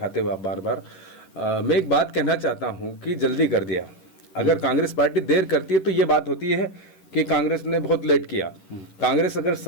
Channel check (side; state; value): right; late; 11 ms